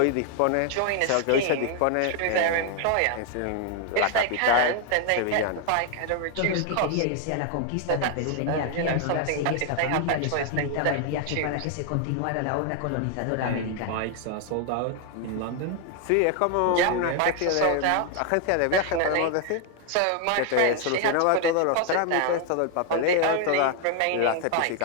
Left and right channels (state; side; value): different; both; correlation 0.00